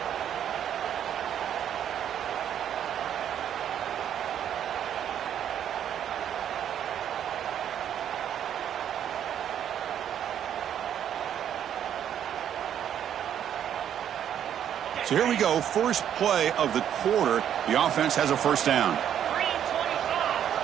So here we go, first play of the quarter. The offense has a first down.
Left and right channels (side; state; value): left; quieter; 9.7 dB